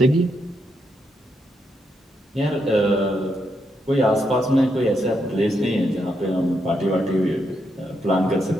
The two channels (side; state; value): both; normal; correlation 0.80